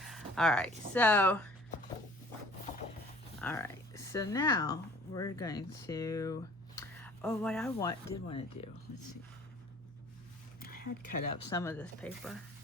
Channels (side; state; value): both; normal; correlation 0.51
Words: All right, so now we're going to, what I did want to do, let's see. I had cut up some of this paper.